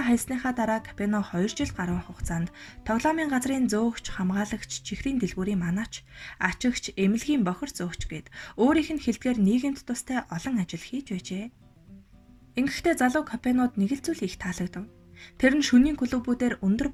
хайсныхаа дараа Капоне 2 жил гаруй хугацаанд тоглоомын газрын зөөгч, хамгаалагч, чихрийн дэлгүүрийн манаач, ачигч, эмнэлгийн бохир зөөгч гээд өөрийнх нь хэлдгээр нийгэмд тустай олон ажил хийж байжээ. Ингэхдээ залуу Капонед нэг л зүйл их таалагдав. Тэр нь шөнийн клубүүдээр өндөр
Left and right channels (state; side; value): identical; both; correlation 1.00